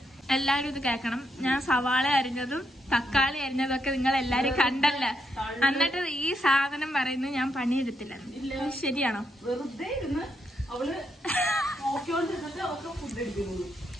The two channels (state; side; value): normal; both; correlation 0.80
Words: എല്ലാവരും ഇത് കേൾക്കണം. ഞാൻ സവാള അരിഞ്ഞതും തക്കാളി അരിഞ്ഞതും ഒക്കെ നിങ്ങൾ എല്ലാരും കണ്ടല്ല. എന്നിട്ട് ഈ സാധനം പറയുന്നത് ഞാൻ പണിയെടുത്തില്ല. ശരിയാണോ?